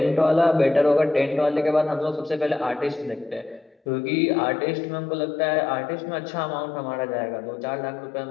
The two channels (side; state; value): right; drops out; at 3.8 s